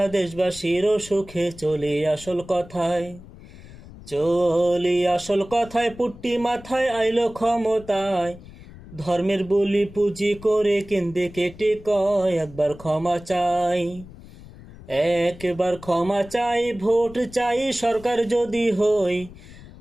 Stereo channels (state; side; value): noise; left; rumble, 18 dB below the sound